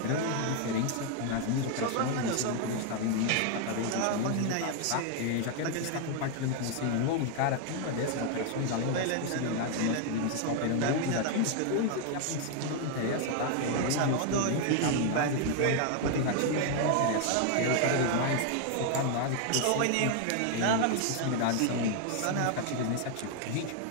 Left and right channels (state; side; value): different; both; correlation 0.00